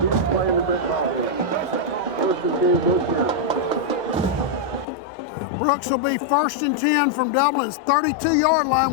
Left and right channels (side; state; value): right; drops out; at 4.9 s